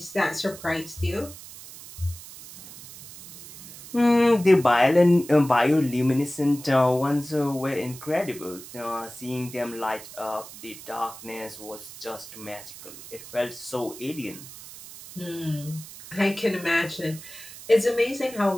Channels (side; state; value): right; noise; hiss, 15 dB below the sound